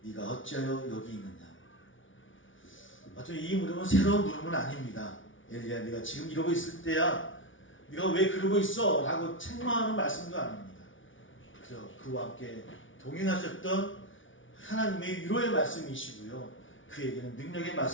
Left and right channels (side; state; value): right; late; 0.56 ms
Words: 네가 어찌하여 여기 있느냐? 마침 이 물음은 새로운 물음은 아닙니다. 엘리야, 네가 지금 이러고 있을 때야 네가 왜 그러고 있어? 라고 책망하는 말씀도 아닙니다. 그저 그와 함께 동행하셨던 하나님의 위로의 말씀이시고요. 그에게는 능력의